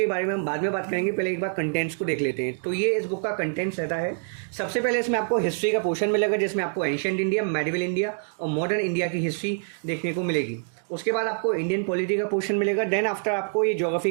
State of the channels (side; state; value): left; silent; digital silence